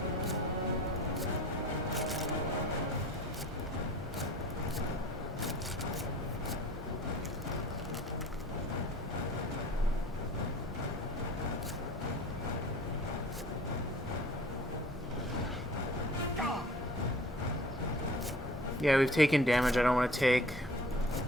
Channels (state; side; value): normal; both; correlation 0.46